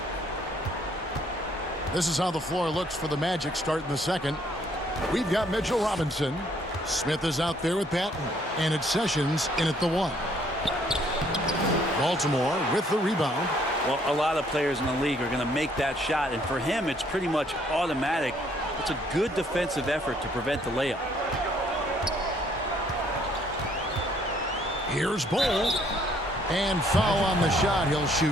This is how the floor looks for the Magic starting the second. We've got Mitchell Robinson. Smith is out there with Patton. And it's Sessions in at the 1. Baltimore with the rebound. Well, a lot of players in the league are going to make that shot, and for him, it's pretty much automatic. It's a good defensive effort to prevent the layup. Here's Bull. And foul on the shot. He'll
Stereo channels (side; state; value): both; normal; correlation 0.65